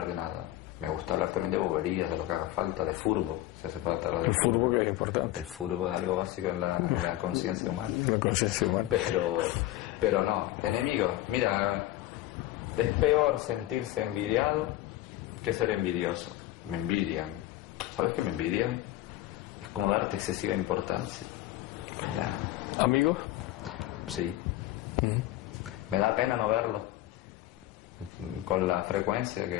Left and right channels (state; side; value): quieter; right; 15.3 dB